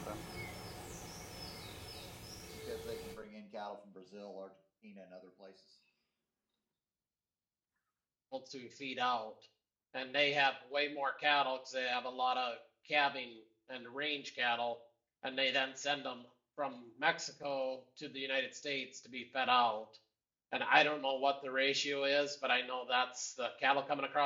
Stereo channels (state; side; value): identical; both; correlation 1.00